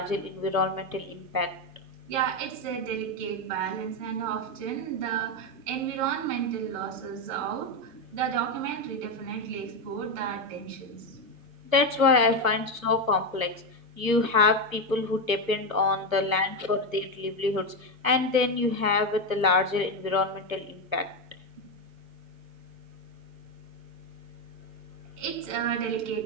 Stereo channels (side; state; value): left; late; 1.1 ms